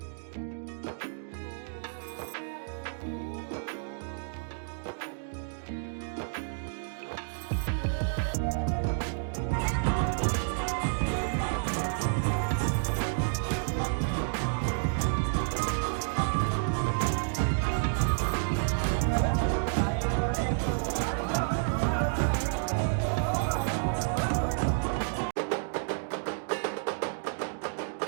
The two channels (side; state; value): left; silent; digital silence